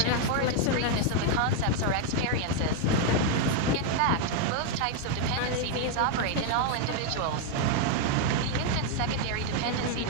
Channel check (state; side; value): different; both; correlation 0.01